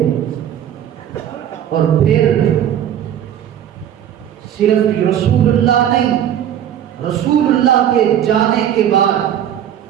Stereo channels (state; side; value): quieter; left; 10.3 dB